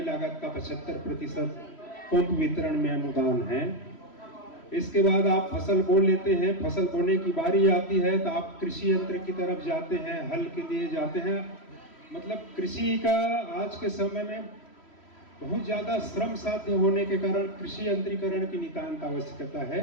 लागत का 75% पंप वितरण में अनुदान है। इसके बाद आप फसल बो लेते हैं, फसल बोने की बारी आती है तो आप कृषि यंत्र की तरफ जाते हैं, हल के लिए जाते हैं। मतलब कृषि का आज के समय में बहुत ज़्यादा श्रम साध्य होने के कारण कृषि यंत्रीकरण की नितांत आवश्यकता है।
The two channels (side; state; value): right; late; 3.1 ms